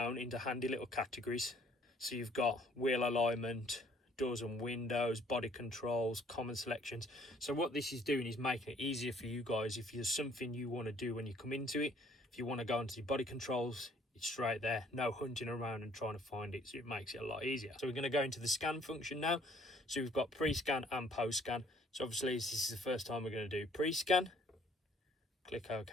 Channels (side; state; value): both; normal; correlation 0.61